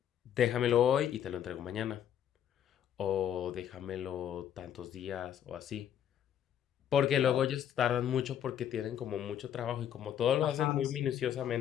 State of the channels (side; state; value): right; quieter; 9.8 dB